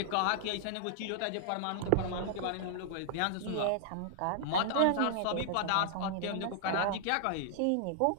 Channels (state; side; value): different; both; correlation -0.01